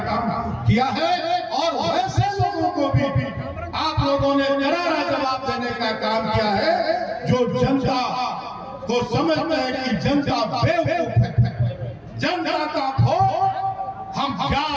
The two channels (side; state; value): both; identical; correlation 1.00